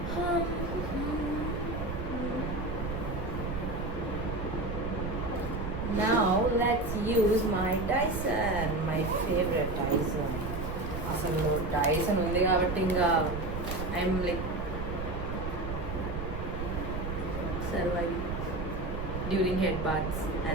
now let's use my Dyson, my favorite Dyson. అసలు Dyson ఉంది కాబట్టి ఇంకా I'm like surviving during head baths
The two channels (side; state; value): right; noise; rumble, 5 dB below the sound